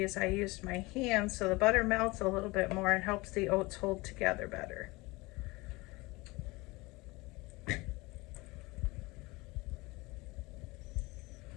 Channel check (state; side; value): quieter; right; 23.2 dB